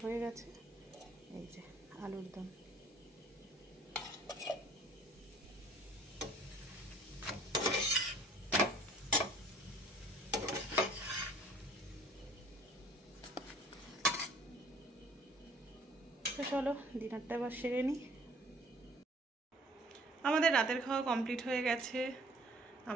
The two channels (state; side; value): normal; both; correlation 0.54